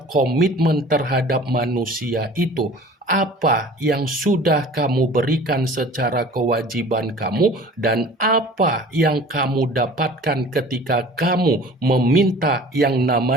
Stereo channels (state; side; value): normal; both; correlation 0.45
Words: komitmen terhadap manusia itu, apa yang sudah kamu berikan secara kewajiban kamu dan apa yang kamu dapatkan ketika kamu meminta yang